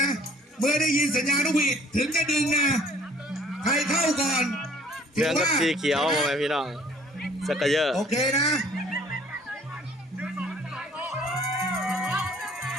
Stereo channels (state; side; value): normal; both; correlation 0.56